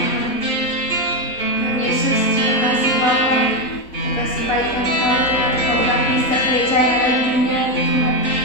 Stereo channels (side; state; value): right; late; 3.7 ms